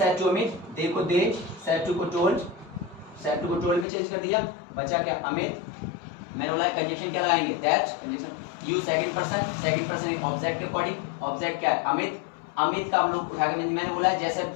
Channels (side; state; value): right; drops out; at 3.9 s